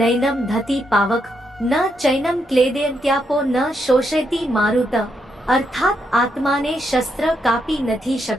નૈનમ ધતી પાવક ન ચૈનમ ક્લેદયંત્યાપો ન શોષયતી મારુત। અર્થાત આત્માને શસ્ત્ર કાપી નથી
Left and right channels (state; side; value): normal; both; correlation 0.79